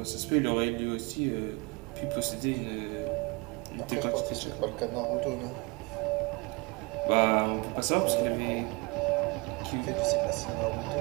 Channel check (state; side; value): quieter; left; 27.4 dB